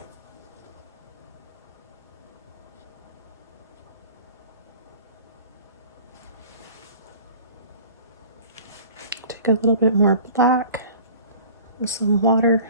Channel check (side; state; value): both; inverted; correlation -0.44